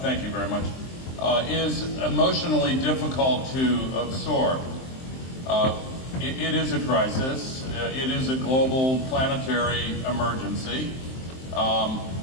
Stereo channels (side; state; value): right; late; 23 ms